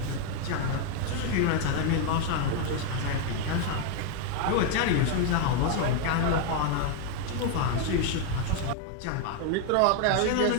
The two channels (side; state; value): both; different; correlation 0.01